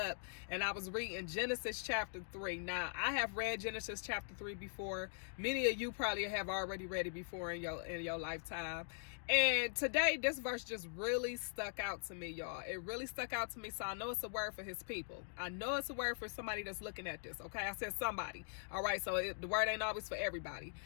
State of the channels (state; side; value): silent; right; digital silence